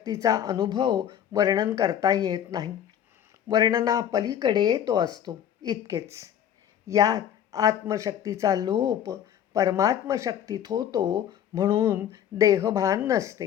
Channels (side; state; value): right; quieter; 9.8 dB